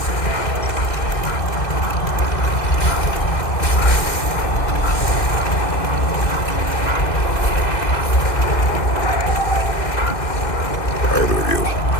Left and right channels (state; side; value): late; right; 2.6 ms